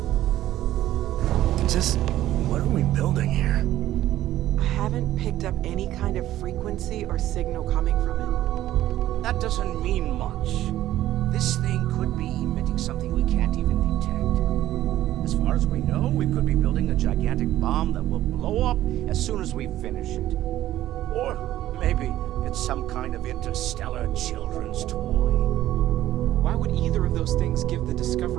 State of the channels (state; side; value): quieter; left; 13.8 dB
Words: Just, what are we building here? I haven't picked up any kind of frequency or signal coming from it. That doesn't mean much. This thing could be emitting something we can't even detect. As far as we know, we could be building a gigantic bomb that will blow up as soon as we finish it. Or maybe it's some kind of interstellar children's toy. Why would either of those things give the